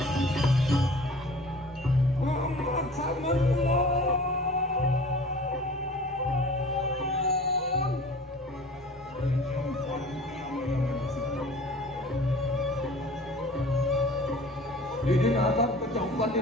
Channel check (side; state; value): both; normal; correlation 0.44